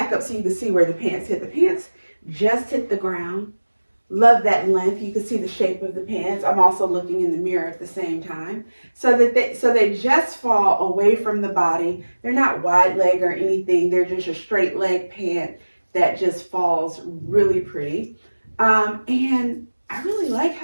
up so you can see where the pants hit. The pants just hit the ground. Love that length. You can see the shape of the pants. I'm also looking in the mirror at the same time. So they just fall away from the body. They're not wide leg or anything. They're just a straight leg pant that just falls really pretty. And I really like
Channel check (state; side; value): inverted; both; correlation -1.00